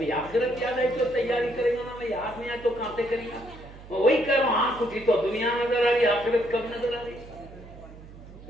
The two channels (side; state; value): right; noise; hum, 18 dB below the sound